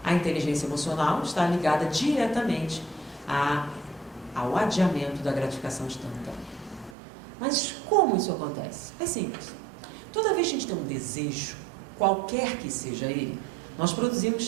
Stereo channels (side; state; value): left; drops out; at 7.0 s